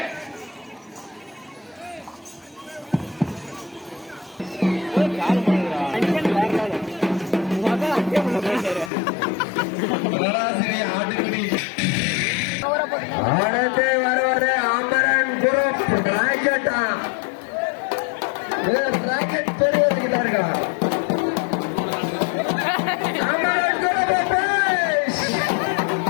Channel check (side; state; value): right; drops out; at 8.9 s